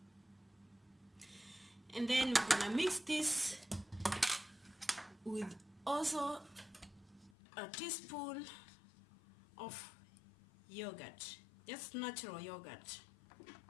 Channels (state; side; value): drops out; right; at 7.3 s